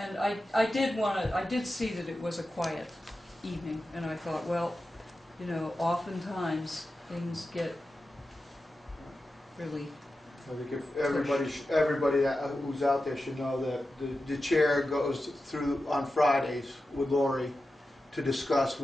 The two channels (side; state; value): both; normal; correlation 0.92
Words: And I did see that it was a quiet evening, and I thought, well, you know, oftentimes things get really, I think if everybody who's out there should know that the chair goes through on Fridays with Lori to discuss